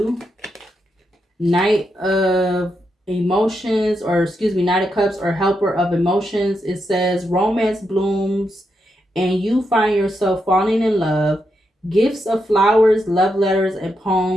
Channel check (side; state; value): both; normal; correlation 0.83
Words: Knight of Emotions, or excuse me, Knight of Cups or Helper of Emotions. It says romance blooms and you find yourself falling in love. Gifts of flowers, love letters, and